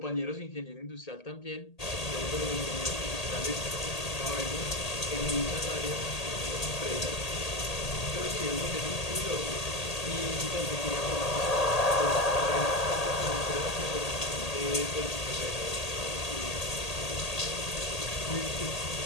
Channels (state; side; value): late; right; 1.8 ms